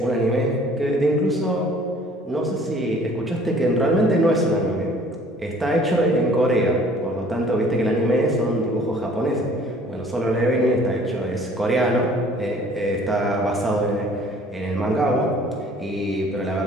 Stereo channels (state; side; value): normal; both; correlation 0.53